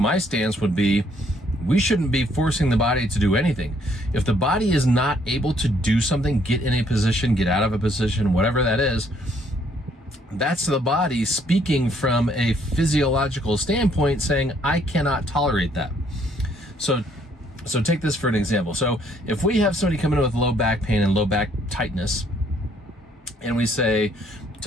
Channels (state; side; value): normal; both; correlation 0.67